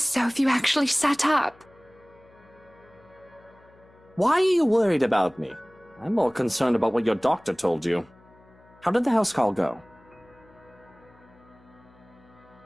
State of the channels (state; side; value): noise; left; hum, 28 dB below the sound